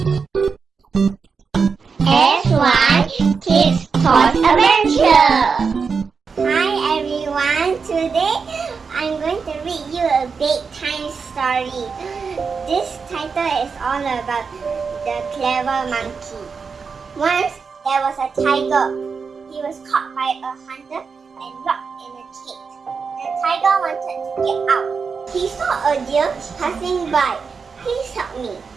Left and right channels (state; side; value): quieter; left; 5.4 dB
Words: Kids Toys Adventure. Hi everyone, today I'm going to read you a bedtime story. This title is all about the clever monkey. Once there was a tiger. He was caught by a hunter and locked in a cage. The tiger wanted to get out. He saw a deer passing by. Please help me,